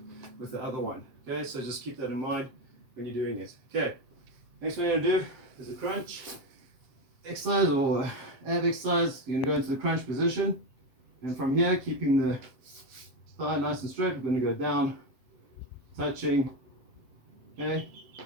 with the other one. Okay, so just keep that in mind when you're doing it. Okay, next one you're going to do is a crunch exercise or ab exercise. You're going to go into the crunch position, and from here, keeping the thigh nice and straight, we're going to go down, touching, okay,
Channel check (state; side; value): late; left; 7.8 ms